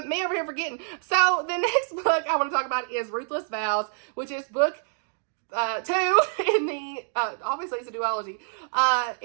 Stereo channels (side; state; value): left; silent; 61 dB below the other